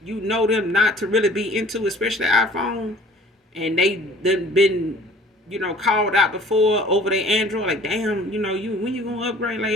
them not to really be into, especially iPhone, and they done been, called out before over their Android, like damn, you when you gonna upgrade? Like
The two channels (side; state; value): both; normal; correlation 0.50